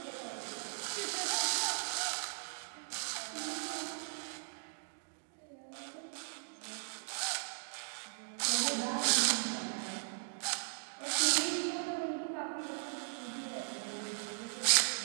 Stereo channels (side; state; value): left; silent; digital silence